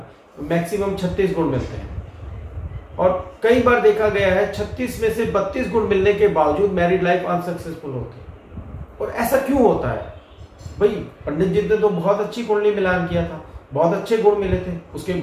मैक्सिमम 36 गुण मिलते हैं। और कई बार देखा गया है 36 में से 32 गुण मिलने के बावजूद मैरिड लाइफ अनसक्सेसफुल होती है। और ऐसा क्यों होता है भाई? पंडित जी ने तो बहुत अच्छी कुंडली मिलान किया था, बहुत अच्छे गुण मिले थे, उसके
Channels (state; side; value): identical; both; correlation 1.00